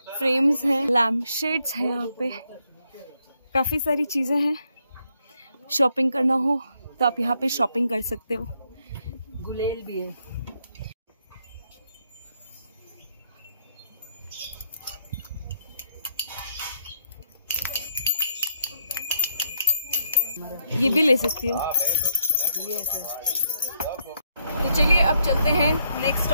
फ्रेम्स हैं, लैम्प शेड्स हैं, यहाँ पे काफी सारी चीजें हैं। शॉपिंग करना हो तो आप यहाँ पे शॉपिंग कर सकते हो। गुलेल भी है। ये भी ले सकती हो। तो चलिए अब चलते हैं नेक्स्ट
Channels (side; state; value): both; inverted; correlation -0.76